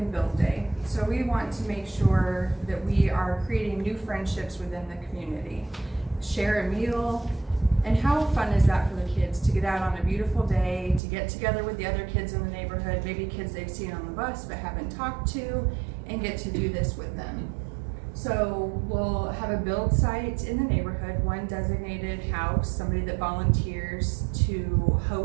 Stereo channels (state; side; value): drops out; left; at 11.0 s